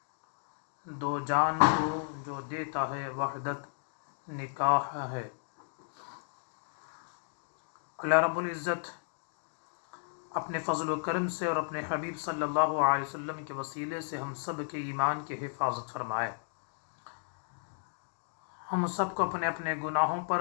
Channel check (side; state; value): right; silent; digital silence